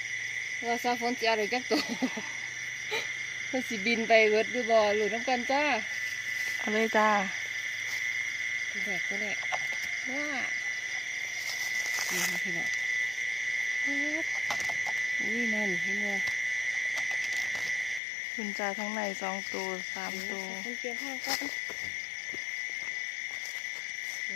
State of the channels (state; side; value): drops out; right; at 18.0 s